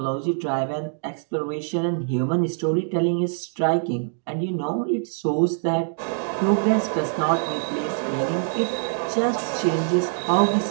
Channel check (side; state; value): left; silent; 62 dB below the other